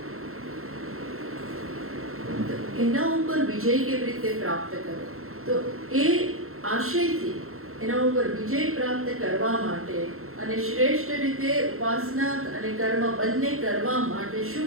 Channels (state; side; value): late; left; 0.62 ms